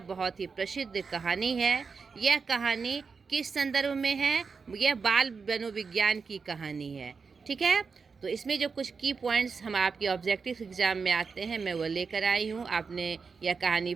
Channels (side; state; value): left; quieter; 5.2 dB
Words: बहुत ही प्रसिद्ध कहानी है। यह कहानी किस संदर्भ में है? यह बाल मनोविज्ञान की कहानी है। ठीक है, तो इसमें जो कुछ की पॉइंट्स हम आपके ऑब्जेक्टिव एग्जाम में आते हैं मैं वो लेकर आई हूँ। आपने यह कहानी